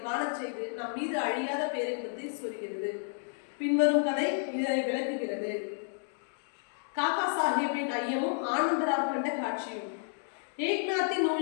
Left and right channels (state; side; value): silent; right; digital silence